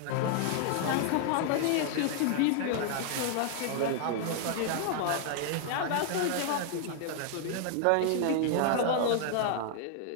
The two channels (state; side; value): different; both; correlation 0.00